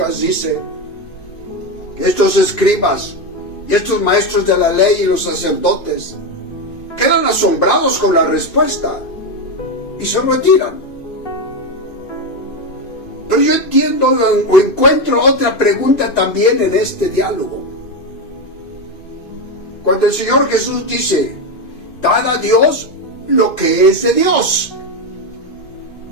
dice que estos escribas y estos maestros de la ley y los sacerdotes quedan asombrados con la respuesta y se retiran. Pero yo entiendo o encuentro otra pregunta también en este diálogo. Cuando el Señor Jesús dice: dad a Dios lo que es de Dios.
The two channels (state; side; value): late; right; 2.5 ms